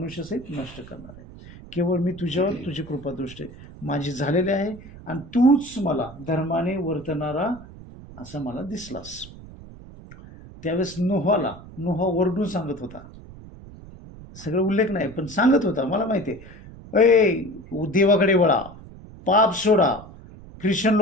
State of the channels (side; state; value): right; noise; rumble, 17 dB below the sound